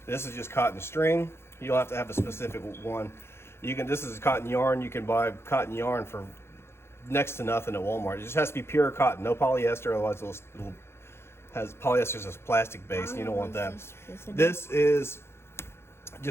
This is just cotton string. You don't have to have a specific one. This is cotton yarn. You can buy cotton yarn for next to nothing at Walmart. It just has to be pure cotton, no polyester. Otherwise, polyester is a plastic base, and you don't want that. This is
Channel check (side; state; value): right; late; 0.12 ms